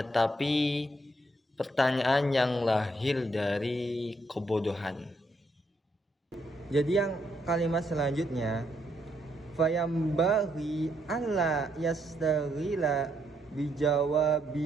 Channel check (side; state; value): both; normal; correlation 0.75